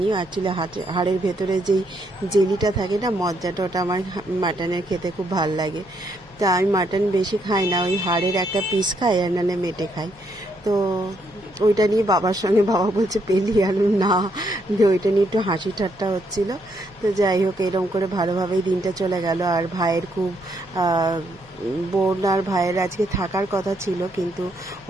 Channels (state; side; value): noise; right; hum, 28 dB below the sound